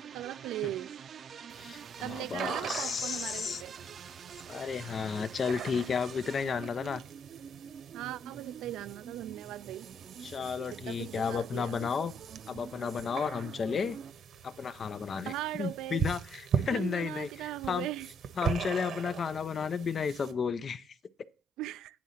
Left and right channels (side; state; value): both; normal; correlation 0.70